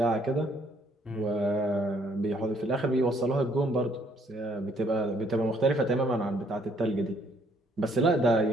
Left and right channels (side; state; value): both; normal; correlation 0.65